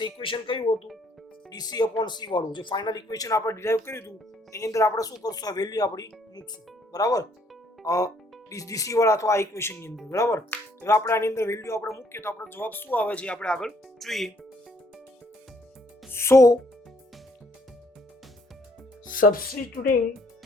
ઇક્વેશન કયું હતું? DC upon C વાળું જે ફાઇનલ ઇક્વેશન આપણે ડિરાઈવ કર્યું હતું એની અંદર આપણે શું કરશું? આ વેલ્યુ આપણી મૂકશું. બરાબર, DC વાળા અથવા આ ઇક્વેશનની અંદર. બરાબર, હવે આપણે આની અંદર વેલ્યુ આપણે મૂકીએ તો આપણો જવાબ શું આવે છે આપણે આગળ જોઈએ. સો substituting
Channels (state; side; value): normal; both; correlation 0.66